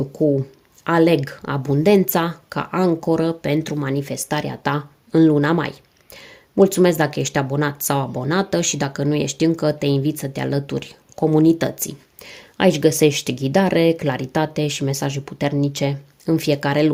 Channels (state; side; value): identical; both; correlation 1.00